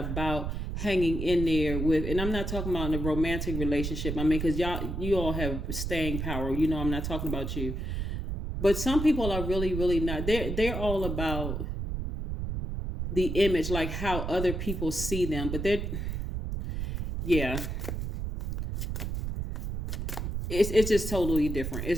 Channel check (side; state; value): right; noise; rumble, 3 dB below the sound